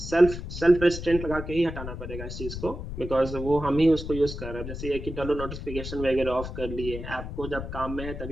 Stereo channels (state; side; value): noise; left; rumble, 8 dB below the sound